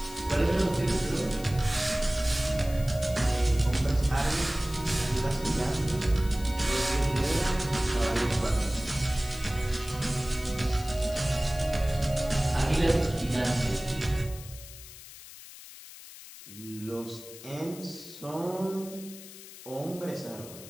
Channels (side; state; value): left; noise; hiss, 16 dB below the sound